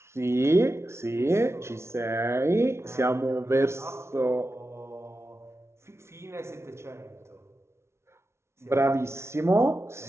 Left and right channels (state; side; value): late; left; 0.13 ms